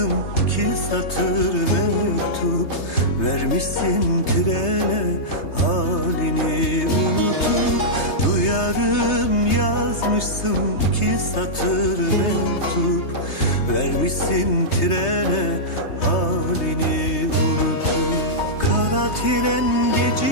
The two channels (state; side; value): late; right; 3.3 ms